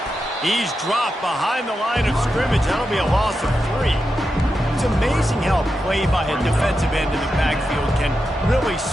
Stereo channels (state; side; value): normal; both; correlation 0.88